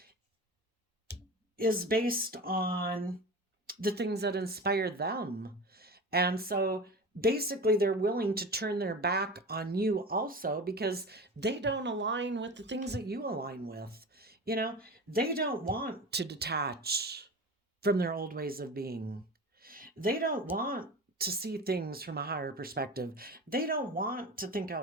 is based on the things that inspire them. And so basically they're willing to turn their back on you also because they don't align with the things that you align with. They don't want to detach from their old ways of being. They don't want to see things from a higher perspective. They don't want to think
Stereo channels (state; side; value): normal; both; correlation 0.31